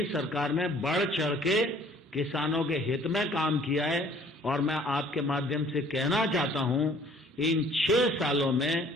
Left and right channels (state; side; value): normal; both; correlation 0.56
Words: सरकार ने बढ़ चढ़ के किसानों के हित में काम किया है। और मैं आपके माध्यम से कहना चाहता हूं, इन 6 सालों में